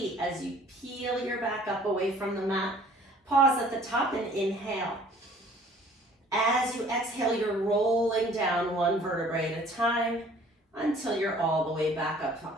as you peel your back up away from the mat. Pause at the top and inhale. As you exhale, you're rolling down one vertebrae at a time until you're all the way back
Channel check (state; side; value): normal; both; correlation 0.54